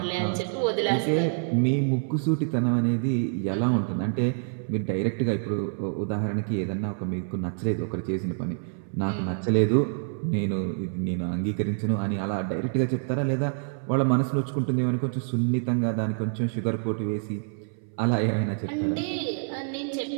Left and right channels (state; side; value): silent; left; 60 dB below the other